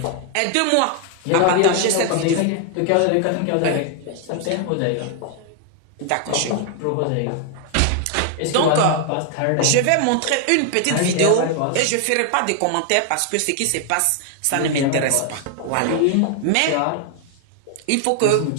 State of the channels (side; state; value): both; different; correlation 0.00